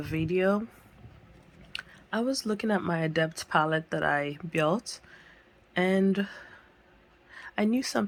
video, I was looking at my Adept palette that I built, and I knew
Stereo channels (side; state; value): both; identical; correlation 1.00